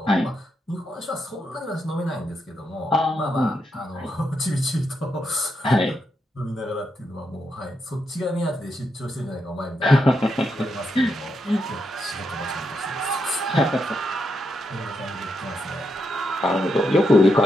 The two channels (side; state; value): both; normal; correlation 0.82